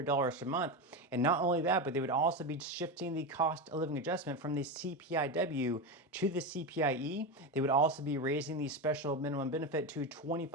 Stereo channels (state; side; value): normal; both; correlation 0.17